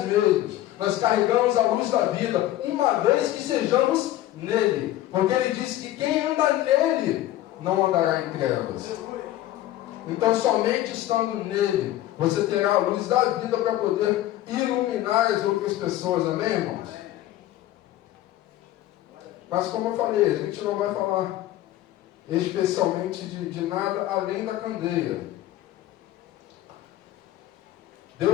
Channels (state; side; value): quieter; right; 14.3 dB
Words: mesmos. Nós carregamos a luz da vida, uma vez que sejamos nele. Porque ele disse que quem anda nele não andará em trevas. Então, somente estando nele, você terá a luz da vida para poder iluminar as outras pessoas. Amém, irmãos? Mas, como eu falei, a gente não vai falar especialmente de nada além da candeia.